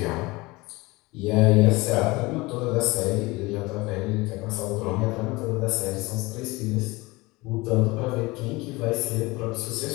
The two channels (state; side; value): quieter; right; 22.6 dB